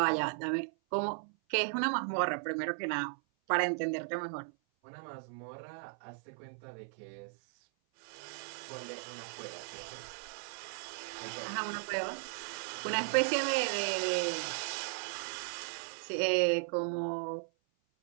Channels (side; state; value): left; silent; 54 dB below the other